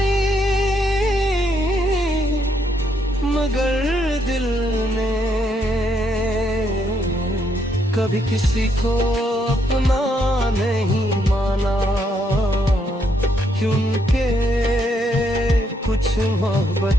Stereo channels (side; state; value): both; normal; correlation 0.74